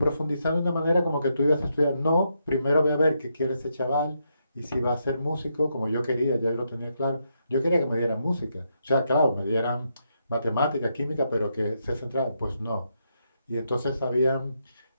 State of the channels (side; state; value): both; inverted; correlation -0.80